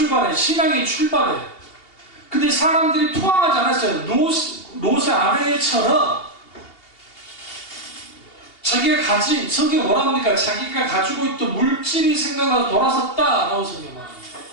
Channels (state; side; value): late; right; 2.8 ms